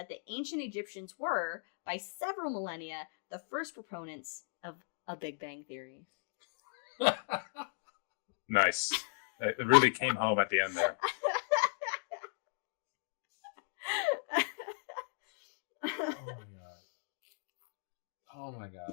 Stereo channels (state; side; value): silent; right; digital silence